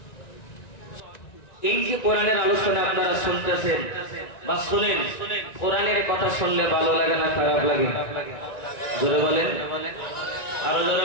এই যে কোরআনের আলোচনা আপনারা শুনতেছেন বা শুনেন, কোরআনের কথা শুনলে ভালো লাগে না খারাপ লাগে? জোরে বলেন, আরো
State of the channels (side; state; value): right; late; 1.9 ms